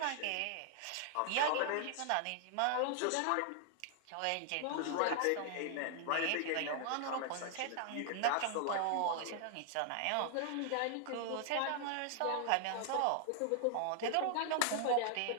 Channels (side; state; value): both; different; correlation 0.00